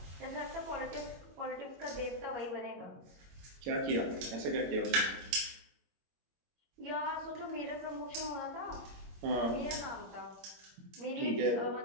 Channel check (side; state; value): left; late; 22 ms